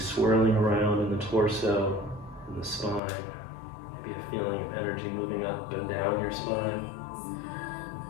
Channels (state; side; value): drops out; right; at 3.0 s